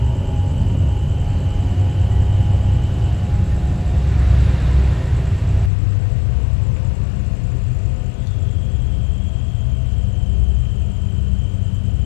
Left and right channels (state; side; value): drops out; right; at 5.7 s